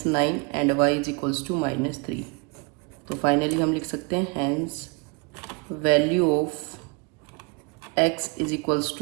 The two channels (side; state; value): left; quieter; 30.8 dB